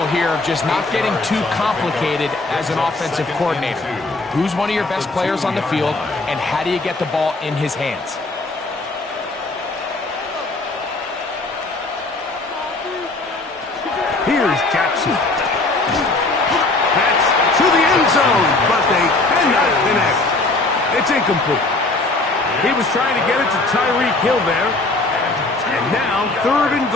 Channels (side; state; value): right; quieter; 3.1 dB